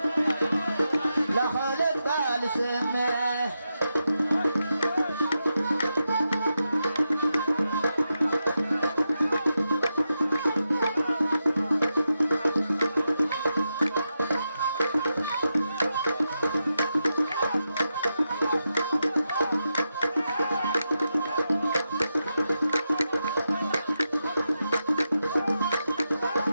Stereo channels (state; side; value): inverted; both; correlation -0.88